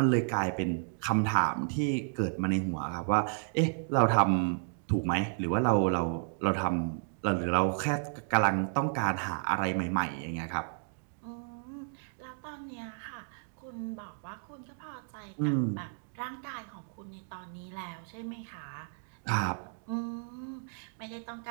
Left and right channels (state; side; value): silent; left; digital silence